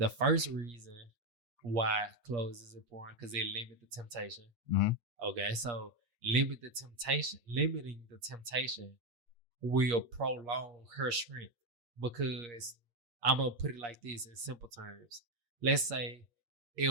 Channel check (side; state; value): left; late; 8.5 ms